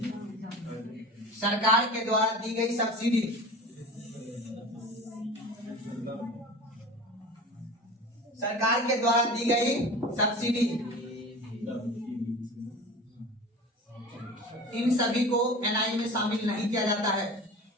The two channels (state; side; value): normal; both; correlation 0.35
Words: सरकार के द्वारा दी गई सब्सिडी, सरकार के द्वारा दी गई सब्सिडी, इन सभी को एनआई में शामिल नहीं किया जाता है,